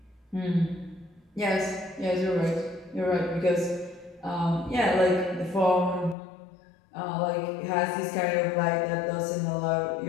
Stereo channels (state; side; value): drops out; right; at 6.2 s